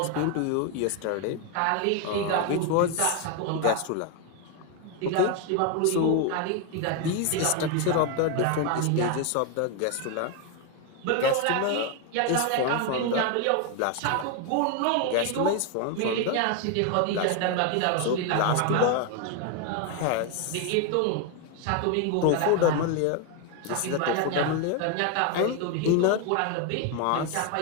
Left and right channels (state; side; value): different; both; correlation 0.01